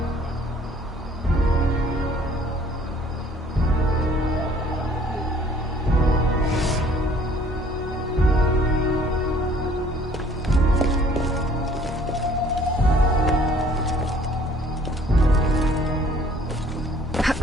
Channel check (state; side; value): normal; both; correlation 0.56